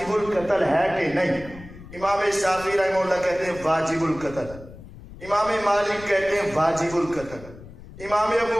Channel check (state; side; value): noise; left; rumble, 17 dB below the sound